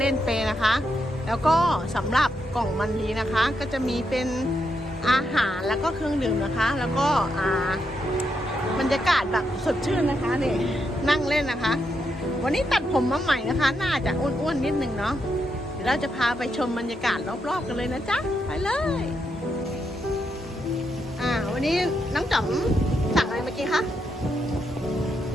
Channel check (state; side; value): normal; both; correlation 0.81